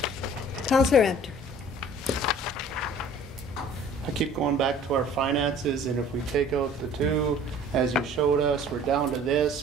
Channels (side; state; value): both; normal; correlation 0.50